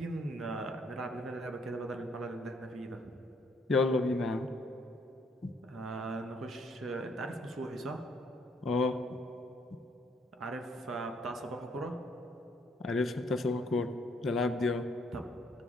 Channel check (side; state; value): both; normal; correlation 0.67